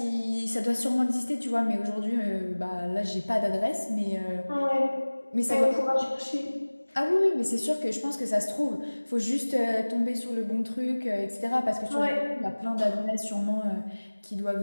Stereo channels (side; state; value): both; inverted; correlation -1.00